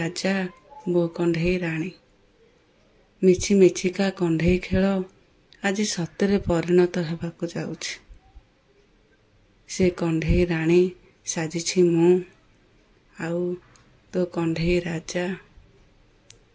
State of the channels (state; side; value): identical; both; correlation 1.00